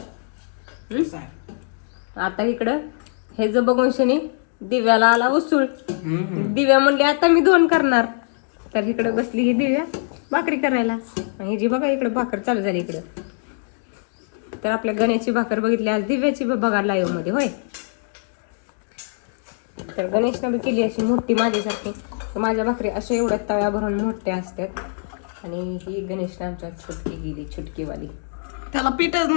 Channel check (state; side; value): silent; right; digital silence